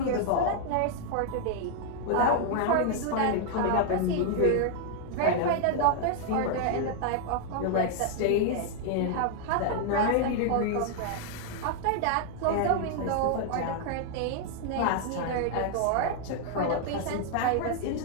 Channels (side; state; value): both; different; correlation 0.00